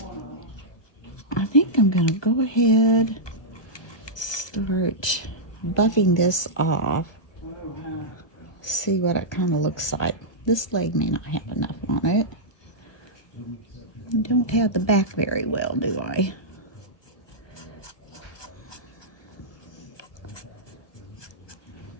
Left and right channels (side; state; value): right; late; 1.2 ms